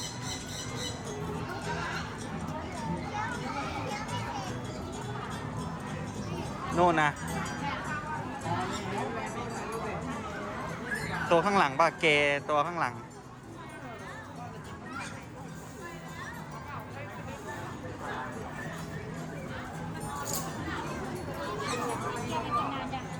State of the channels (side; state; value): both; identical; correlation 1.00